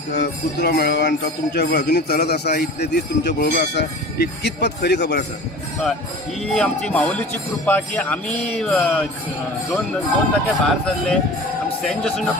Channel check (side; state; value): both; normal; correlation 0.38